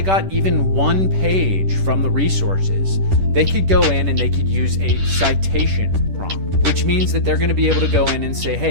got even one page from the resources, they could go in and they could use a citation prompt, which means that they're going to be able to go in and say,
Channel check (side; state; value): left; late; 10 ms